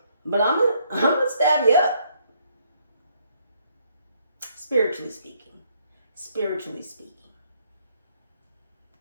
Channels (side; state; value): both; inverted; correlation -0.69